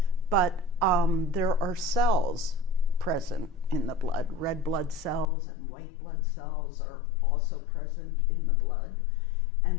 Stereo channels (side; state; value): right; drops out; at 5.2 s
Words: but there are cells present in the blood. Red blood cells and white blood cells are also present in the blood,